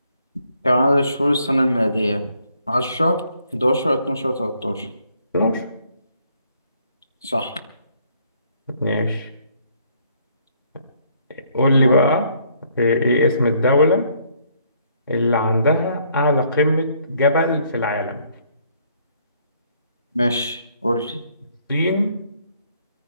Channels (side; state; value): both; inverted; correlation -0.67